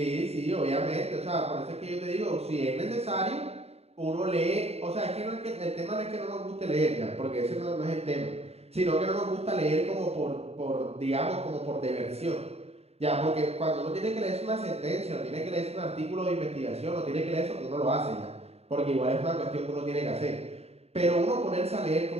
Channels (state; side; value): late; left; 0.30 ms